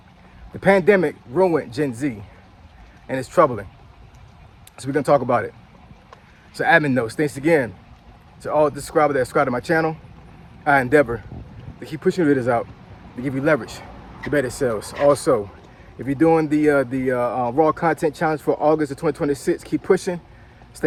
the pandemic ruined Gen Z, and it's troubling. So we're gonna talk about it. So admin notes, thanks again to all the subscribers that subscribe to my channel. I endeavor to keep pushing videos out, to give you leverage to better sales. Also, if you're doing the raw content challenge for August of 2026, keep pushing,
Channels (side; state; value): both; identical; correlation 1.00